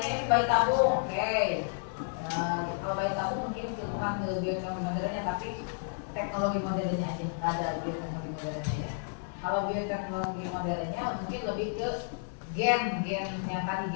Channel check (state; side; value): silent; right; digital silence